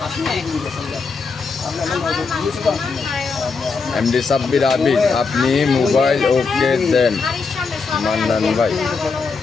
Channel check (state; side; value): quieter; right; 4.7 dB